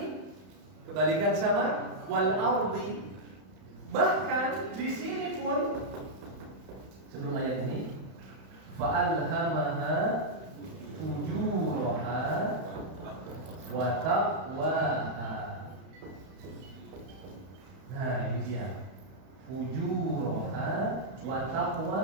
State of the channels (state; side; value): late; left; 31 ms